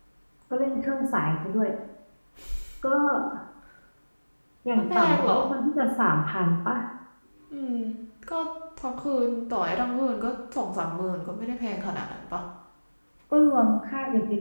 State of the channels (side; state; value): both; inverted; correlation -1.00